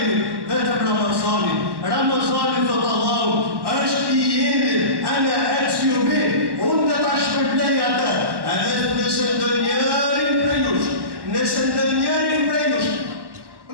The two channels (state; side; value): late; left; 1.1 ms